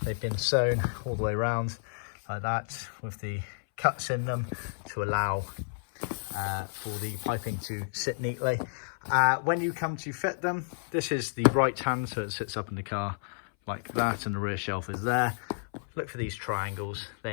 they've been sewn all the way around like that with the cuts in them to allow for the piping to sit neatly. When you come to fit them, this is the right hand, so it sits up in the car like that and the rear shelf is there. Look for these triangles,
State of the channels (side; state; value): right; silent; 57 dB below the other